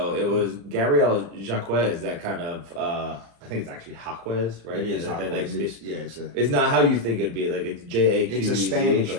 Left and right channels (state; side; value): late; left; 35 ms